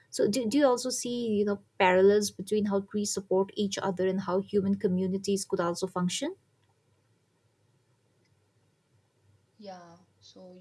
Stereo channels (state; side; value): identical; both; correlation 1.00